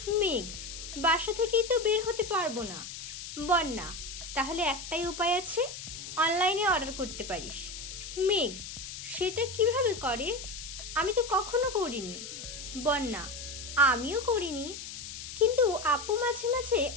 মেঘ, বাসা থেকেই তো বের হতে পারবো না। বন্যা, তাহলে একটাই উপায় আছে, অনলাইনে অর্ডার করতে পারিস। মেঘ, সেটা কিভাবে করে? আমি তো কখনো করিনি। বন্যা, আমিও করিনি, কিন্তু আপু মাঝে মাঝে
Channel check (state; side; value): noise; left; hiss, 10 dB below the sound